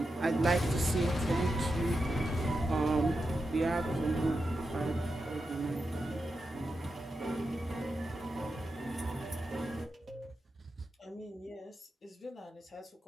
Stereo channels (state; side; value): normal; both; correlation 0.88